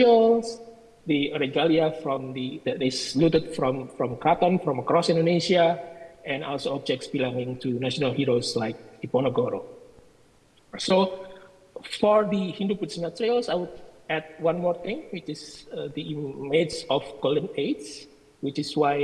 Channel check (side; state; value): both; identical; correlation 1.00